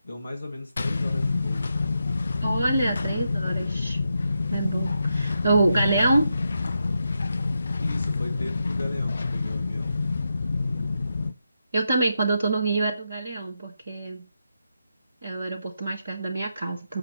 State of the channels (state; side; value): inverted; both; correlation -0.85